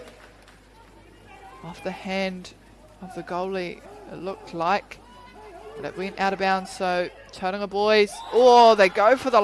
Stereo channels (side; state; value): both; identical; correlation 1.00